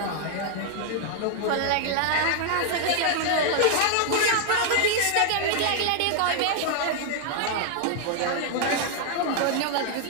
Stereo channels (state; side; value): different; both; correlation -0.01